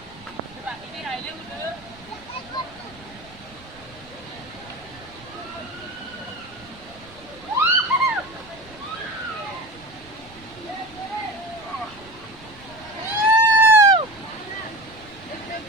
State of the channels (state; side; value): noise; right; rumble, 22 dB below the sound